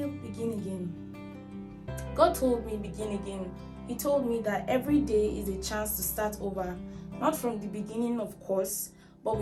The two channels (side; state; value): both; identical; correlation 1.00